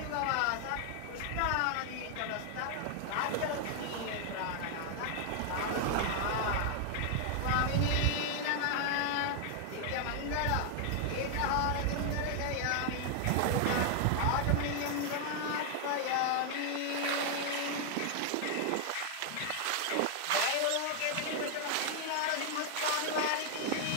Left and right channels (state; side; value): different; both; correlation 0.00